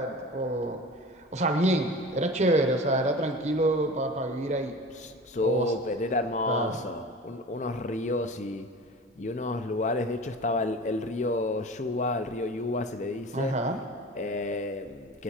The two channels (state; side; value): normal; both; correlation 0.37